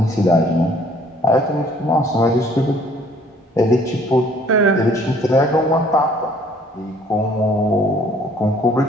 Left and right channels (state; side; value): normal; both; correlation 0.58